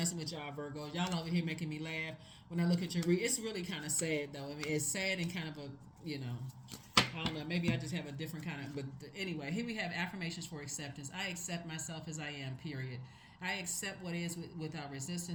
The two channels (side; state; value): both; identical; correlation 1.00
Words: with y'all, Virgo. Y'all over here making me laugh when I look at your read. It's really kind of sad, though. I mean, it's sad and kind of a, I don't know. Maybe I just have a different kind of. But anyway, here we have affirmations for acceptance. I accept myself as I am. Period. I accept what is without